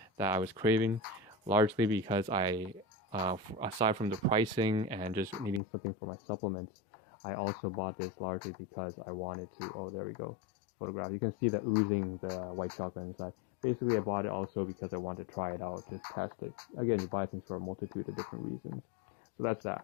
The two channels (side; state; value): right; drops out; at 5.6 s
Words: that I was craving, largely because aside from the pricing and just needing something for my supplements, I also bought this largely because I wanted to, oh, there we go, photograph. You can see the oozing, the white chocolate inside. Basically, I bought it also because I wanted to try it out, just test it. Again, you buy things for a multitude of different reasons. So that's